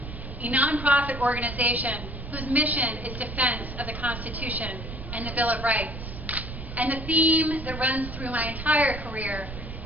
a nonprofit organization whose mission is defense of the Constitution and the Bill of Rights. And the theme that runs through my entire career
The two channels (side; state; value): right; noise; rumble, 9 dB below the sound